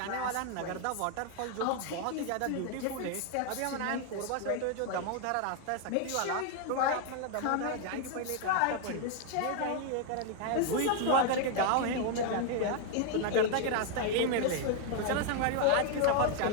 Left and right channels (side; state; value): both; different; correlation 0.00